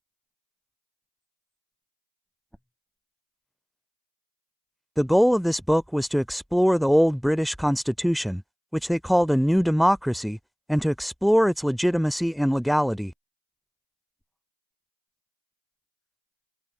The goal of this book was to explore the old British Constitution, which they called a new democracy, and to explore its legitimacy and legality.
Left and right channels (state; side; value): identical; both; correlation 1.00